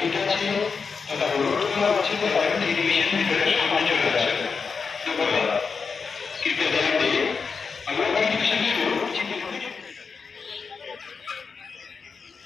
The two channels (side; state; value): right; quieter; 5.3 dB